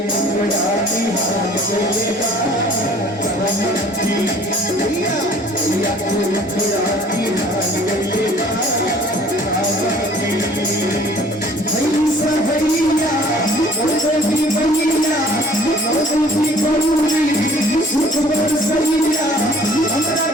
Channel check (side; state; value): both; normal; correlation 0.53